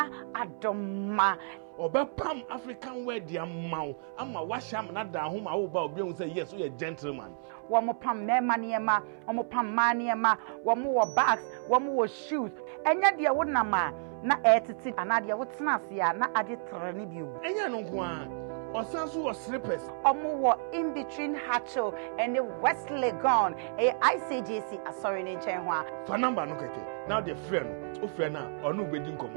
adoma. Obepam African wear dia maw ama washam na da ho ma wo ba obi hu say yes we are gentleman. Womo pam mema niema, womo pam maniema, womo wo bags, womo wo shoes. Enya dia wo nama na etiti anade wo tena ase a na ade trene bi o. Enya no nko a osanso wo slippers. Omo wo in between Hatcho and the West Legon. ICJC asori ne nchen ho a. Fa number no keke. Now the friend, o friend na onu bedi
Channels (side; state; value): left; silent; 57 dB below the other